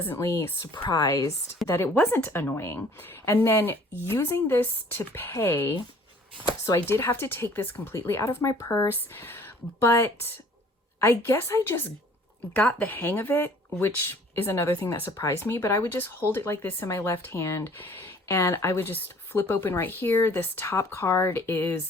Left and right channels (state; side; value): normal; both; correlation 0.54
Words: surprised that it wasn't annoying. And then using this to pay, so I did have to take this completely out of my purse, but I guess I just got the hang of it, which is another thing that surprised me, but I would just hold it like this in my left hand and I would just flip open right here. This top card